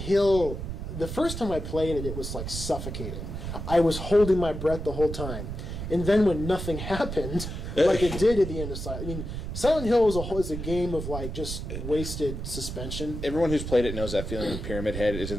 the first time I played it, it was like suffocating. I was holding my breath the whole time, and then when nothing happened, like it did at the end of Silent Hill is a game of like just wasted suspension. Everyone who's played it knows that feeling when Pyramid Head is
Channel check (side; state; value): right; noise; rumble, 6 dB below the sound